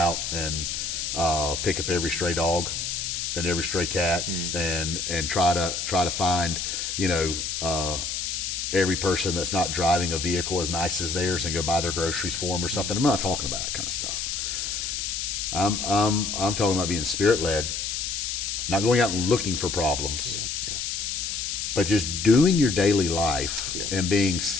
and pick up every stray dog and every stray cat and try to find, you know, every person that's not driving a vehicle as nice as theirs and go buy their groceries for them or something? I'm not talking about that kind of stuff. I'm talking about being spirit led, not going out and looking for problems, but just doing your daily life and being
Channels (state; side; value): noise; left; hiss, 3 dB below the sound